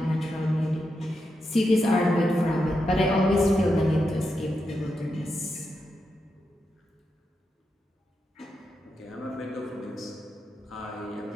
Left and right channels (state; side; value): normal; both; correlation 0.86